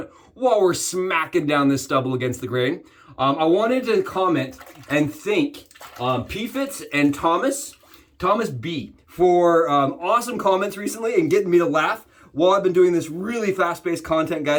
while we're smacking down this stubble against the grain. I wanted to comment and thank PFitz and Thomas B, for awesome comments recently and getting me to laugh while I've been doing this really fast-paced content,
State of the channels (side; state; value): both; identical; correlation 1.00